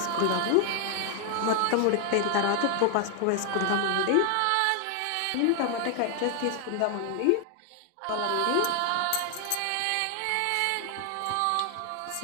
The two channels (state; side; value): different; both; correlation 0.00